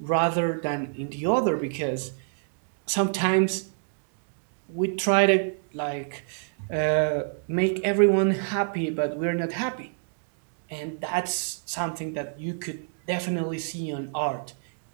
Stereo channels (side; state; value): left; silent; digital silence